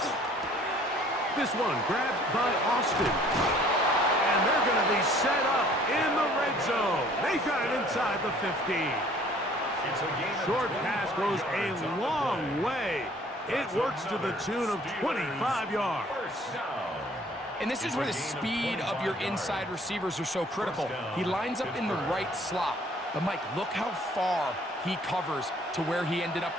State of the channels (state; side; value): normal; both; correlation 0.56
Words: This one grabbed by Austin. And they're going to be set up in the red zone. They got it inside the 15. Short pass goes a long way. It works to the tune of 25 yards. And this is where the speed of your inside receivers are so critical. He lines up in the right slot. But, Mike, look how far he covers to where he ended up